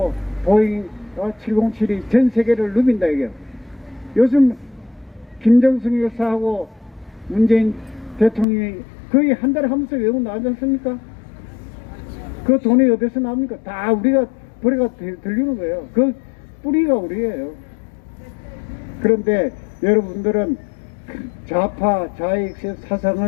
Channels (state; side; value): drops out; right; at 8.5 s